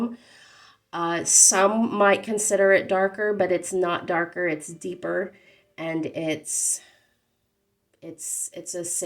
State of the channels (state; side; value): identical; both; correlation 1.00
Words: Some might consider it darker, but it's not darker, it's deeper, and it's a